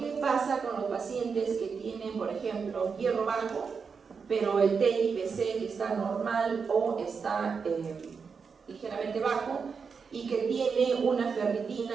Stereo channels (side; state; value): left; quieter; 5.6 dB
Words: pasa con los pacientes que tienen, por ejemplo, hierro bajo, pero el TIBC que está normal o está ligeramente bajo y que tiene una